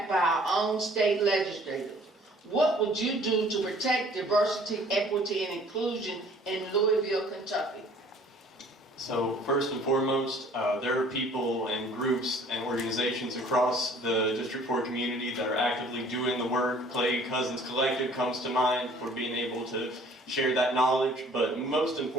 by our own state legislators. What would you do to protect diversity, equity, and inclusion in Louisville, Kentucky? So first and foremost, there are people and groups and organizations across the District 4 community that are actively doing the work. Clay Cousins Collective comes to mind for being able to share that knowledge, but most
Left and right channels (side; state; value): both; normal; correlation 0.54